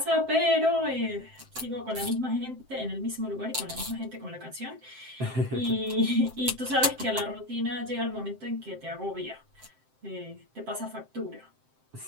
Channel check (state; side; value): late; left; 7.7 ms